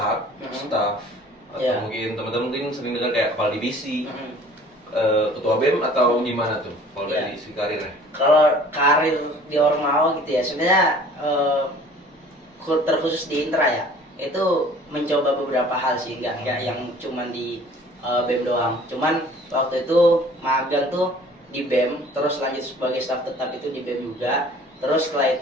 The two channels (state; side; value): normal; both; correlation 0.50